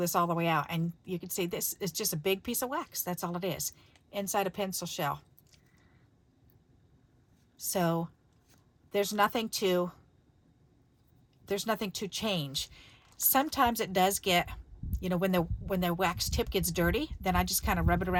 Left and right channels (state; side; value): identical; both; correlation 1.00